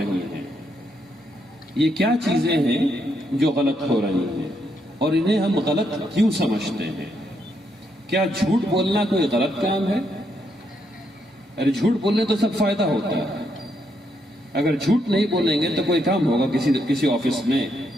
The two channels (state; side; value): normal; both; correlation 0.77